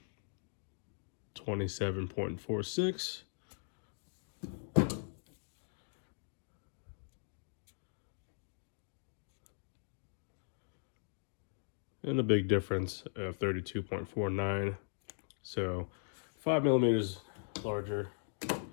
27.46. And a big difference of 32.49. So 5 millimeters larger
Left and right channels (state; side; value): silent; right; digital silence